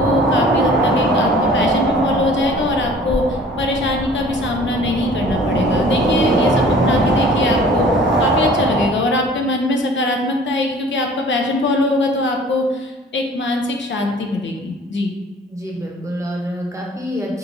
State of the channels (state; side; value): normal; both; correlation 0.49